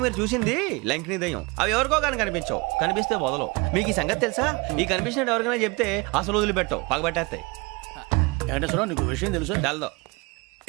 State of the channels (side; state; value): left; quieter; 26.2 dB